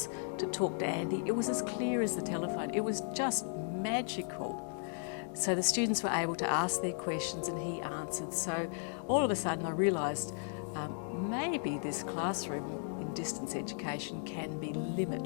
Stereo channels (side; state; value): right; silent; 54 dB below the other